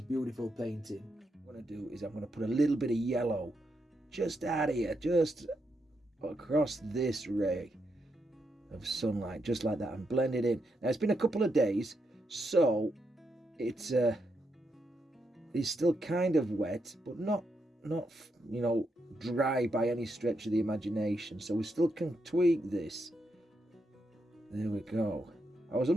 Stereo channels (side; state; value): both; normal; correlation 0.82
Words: painting. What I'm going to do is I'm going to put a little bit of yellow just out here, just across this ray of sunlight, just like that, and blend it in. Now it's been a couple of days, so it's still kind of wet, but not you know, dry by any stretch of the imagination, so we still can tweak this. There we go. I was